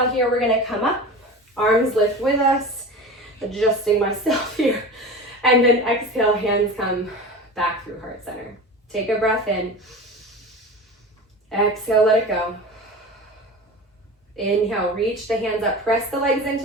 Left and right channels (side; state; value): both; normal; correlation 0.32